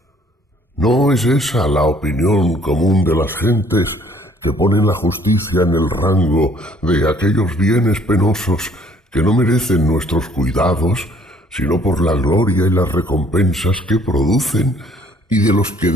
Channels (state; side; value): normal; both; correlation 0.60